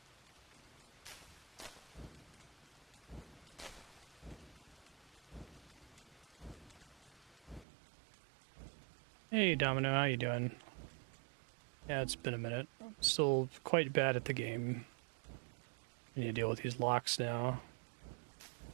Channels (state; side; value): drops out; left; at 7.7 s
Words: Hey Domino, how you doing? Yeah, it's been a minute. I'm still quite bad at the game. I need to deal with these locks now.